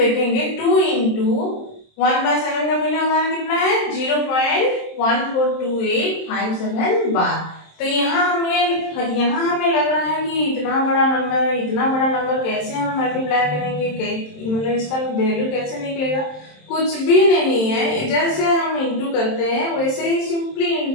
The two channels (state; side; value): late; right; 27 ms